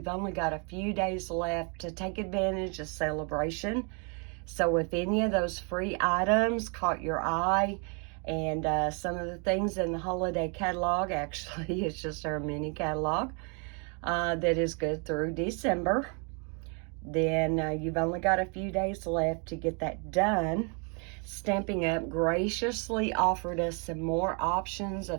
only got a few days left to take advantage of celebration. So if any of those free items caught your eye, and some of the things in the holiday catalog, actually it's just our mini catalog, that is good through December, then you've only got a few days left to get that done. Stampin' Up graciously offered us some more options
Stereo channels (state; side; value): quieter; left; 36.6 dB